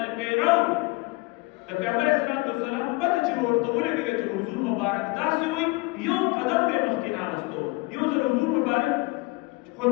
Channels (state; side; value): quieter; right; 24.2 dB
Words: پیرو د پیغمبر اسلام والسلام پته چې ورته ولګي چې حضور مبارک داسې وي یو قدم به مخکې ناغستو. یو ځل حضور مبارک